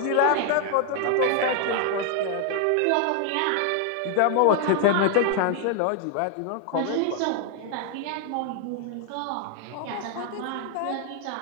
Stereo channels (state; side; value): different; both; correlation 0.00